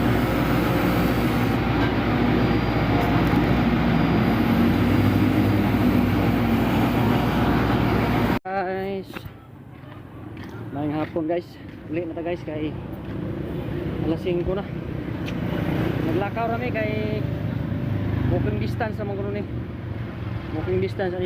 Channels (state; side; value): identical; both; correlation 1.00